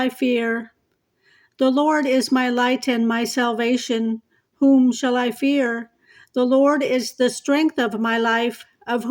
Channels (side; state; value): both; identical; correlation 1.00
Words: fear? The Lord is my light and my salvation. Whom shall I fear? The Lord is the strength of my life. Of